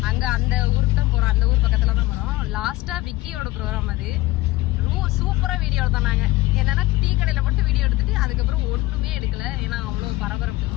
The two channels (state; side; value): quieter; right; 18.8 dB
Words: அங்கே அந்த ஊருக்கு தான் போகிறோம். அந்த ஊர் பக்கத்தில் தான் போகிறோம். லாஸ்ட்டாக விக்கியோட ப்ரோக்ராம் அது. சூப்பராக வீடியோ எடுத்தாங்க. என்னென்னா டீ கடையில் மட்டும் வீடியோ எடுத்துட்டு அதுக்கப்புறம் ஒன்றுமே எடுக்கலை. ஏன்னா அவ்வளோ பரபரப்பு.